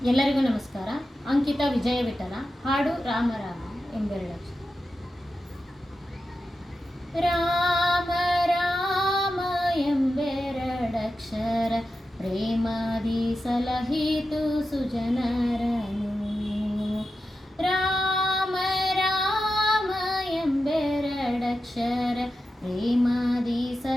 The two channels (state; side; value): normal; both; correlation 0.91